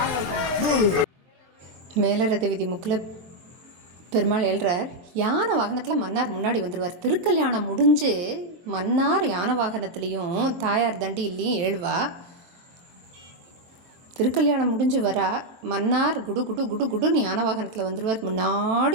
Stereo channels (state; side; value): late; left; 23 ms